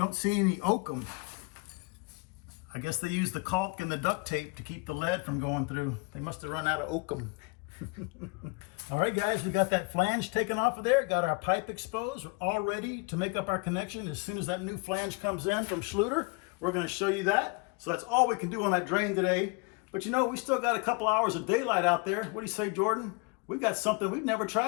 see any oakum. I guess they use the caulk and the duct tape to keep the lead from going through. They must have run out of oakum. All right, guys, we got that flange taken off of there, got our pipe exposed. We're all ready to make up our connection. As soon as that new flange comes in from Schluter, we're going to show you that. So that's all we can do on that drain today. But we still got a couple hours of daylight out there. What do you say, Jordan? We've got something we've never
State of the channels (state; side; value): quieter; right; 29.7 dB